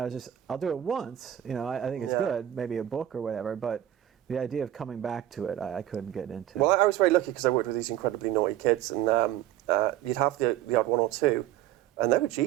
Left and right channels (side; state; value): left; quieter; 12.5 dB